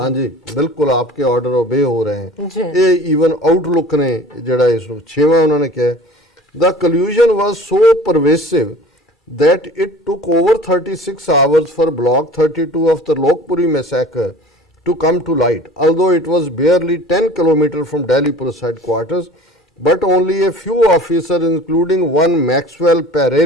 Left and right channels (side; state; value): both; normal; correlation 0.43